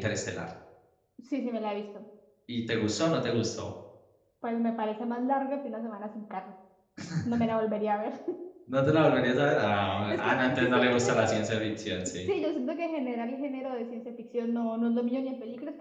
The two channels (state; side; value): identical; both; correlation 1.00